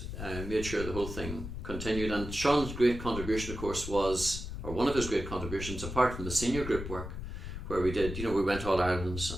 made sure the whole thing continued, and Sean's great contribution, of course, one of his great contributions, apart from the senior group work, where we did, we went All Irelands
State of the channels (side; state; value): left; noise; rumble, 7 dB below the sound